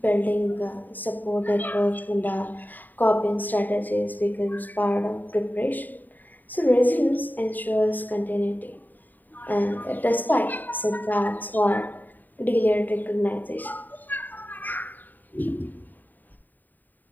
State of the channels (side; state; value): right; late; 0.087 ms